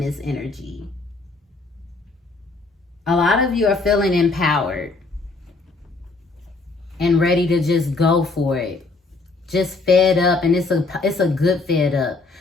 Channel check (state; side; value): quieter; right; 3.6 dB